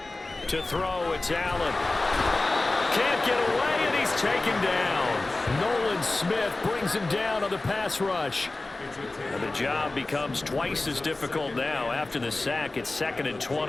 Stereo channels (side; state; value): right; quieter; 3.1 dB